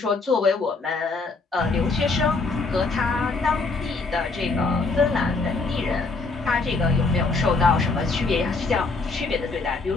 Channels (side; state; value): right; quieter; 3.8 dB